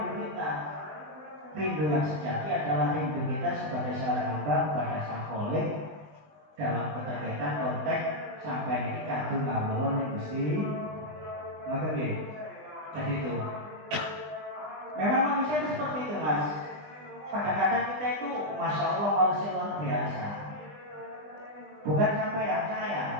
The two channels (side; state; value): left; late; 20 ms